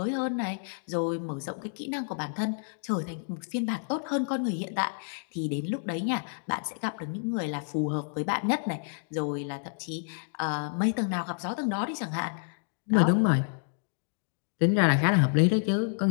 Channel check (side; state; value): right; silent; digital silence